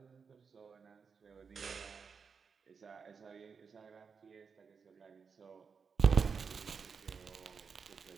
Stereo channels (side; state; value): left; quieter; 5.8 dB